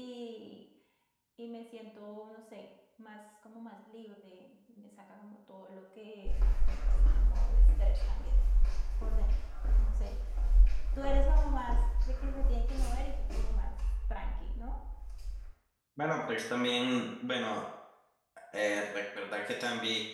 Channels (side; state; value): both; identical; correlation 1.00